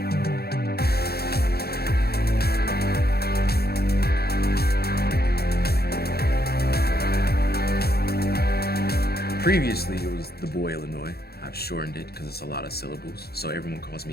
Previously, it was the boy Illinois. I've shortened it because it's a lot of syllables, so everyone calls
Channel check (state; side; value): late; right; 0.46 ms